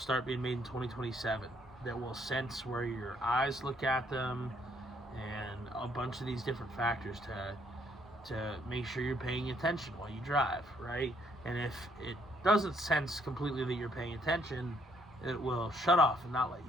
being made in 2027, that will sense where your eyes look at them, and a bunch of these different factors to make sure you're paying attention while you drive, right? And if it doesn't sense completely that you're paying attention, it will shut off and not let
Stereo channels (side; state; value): both; normal; correlation 0.68